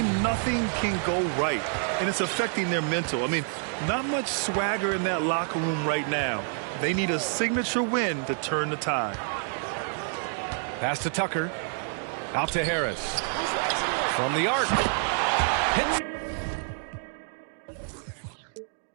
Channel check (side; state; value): left; silent; 59 dB below the other